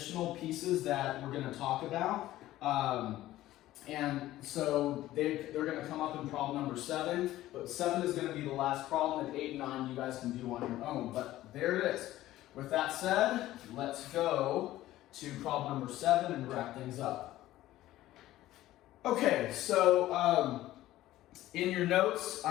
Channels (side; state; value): right; quieter; 15.1 dB